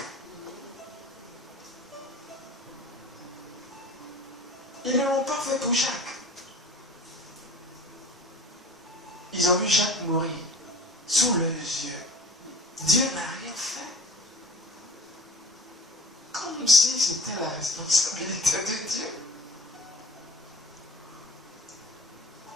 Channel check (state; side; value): normal; both; correlation 0.43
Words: Ils ne l'ont pas fait pour Jacques. Ils ont vu Jacques mourir sous leurs yeux. Dieu n'a rien fait. Comme si c'était la responsabilité de Dieu.